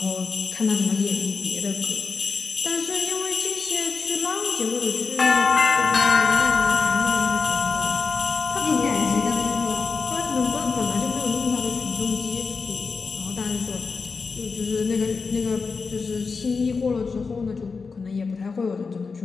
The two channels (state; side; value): quieter; right; 4.7 dB